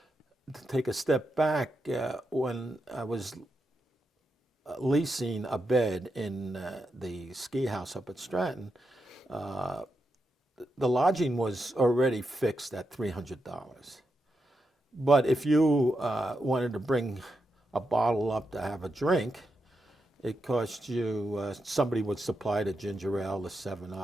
to take a step back, when I was leasing a bed in the ski house up at Stratton, the lodging was already fixed at $300. But if you wanted to bring a bottle up to have a drink, it cost you, somebody would supply the ginger ale, the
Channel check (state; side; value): normal; both; correlation 0.86